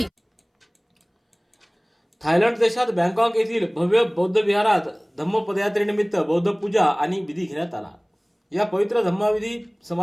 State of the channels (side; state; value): both; identical; correlation 1.00